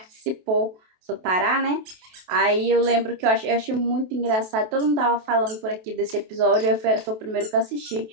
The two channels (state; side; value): late; left; 28 ms